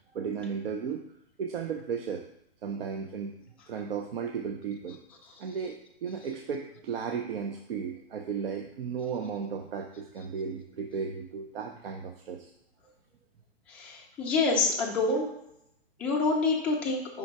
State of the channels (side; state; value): both; normal; correlation 0.05